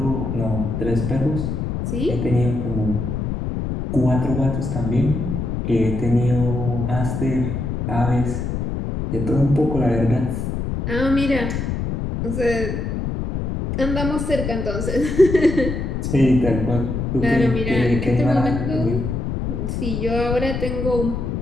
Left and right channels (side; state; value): left; noise; rumble, 3 dB below the sound